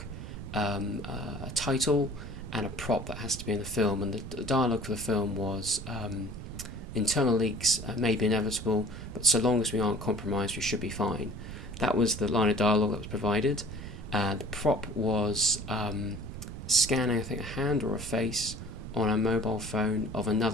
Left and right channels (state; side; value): noise; right; rumble, 9 dB below the sound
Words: a title, and a prop that has to be in the film. And the dialogue for the film was internal leaks may be inevitable, but so long as we aren't compromised, we should be fine. That was the line of dialogue that was provided. The prop was scanning, I think, a hand or a face on a mobile phone of